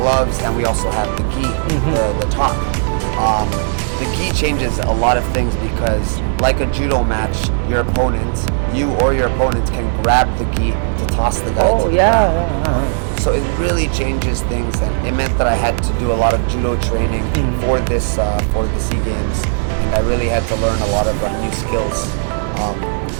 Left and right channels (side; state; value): left; silent; digital silence